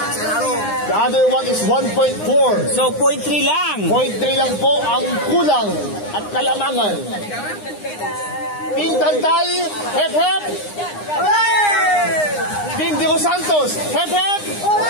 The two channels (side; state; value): right; late; 9.8 ms